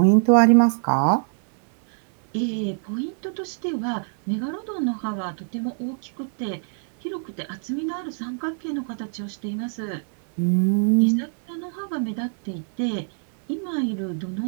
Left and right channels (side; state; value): left; silent; 55 dB below the other